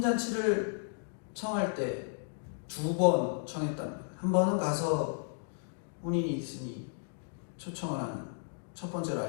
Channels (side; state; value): right; silent; digital silence